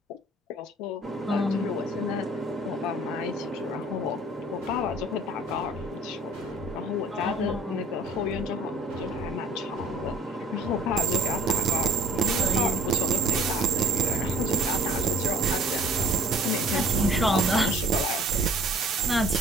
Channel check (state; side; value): normal; both; correlation 0.52